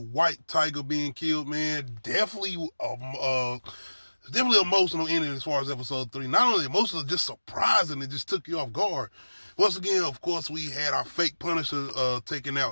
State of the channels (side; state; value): both; inverted; correlation -1.00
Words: Tiger, being killed. Man, definitely emotional ending as far as Episode 3. Not only emotional, just surprising. It just took you off guard. Once again, of course, we had our fake Punisher taking